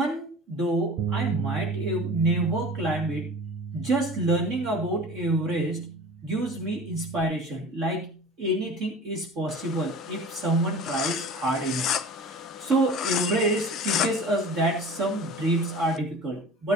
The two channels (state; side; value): normal; both; correlation 0.39